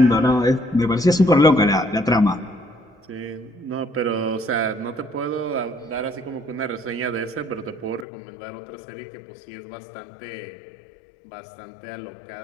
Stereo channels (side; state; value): right; drops out; at 8.1 s